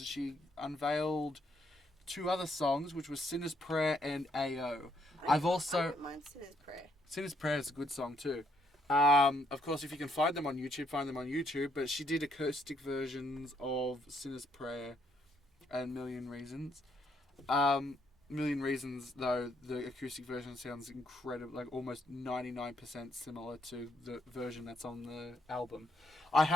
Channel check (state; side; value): normal; both; correlation 0.72